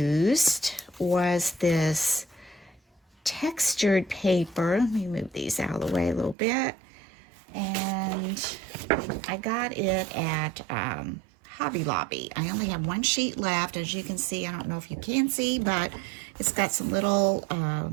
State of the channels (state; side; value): drops out; left; at 6.4 s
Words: was this textured paper. Let me move these out of the way a little bit. And I got it at Hobby Lobby. I only have 1 sheet left. As you can see, I don't know if you can see, but it's got some little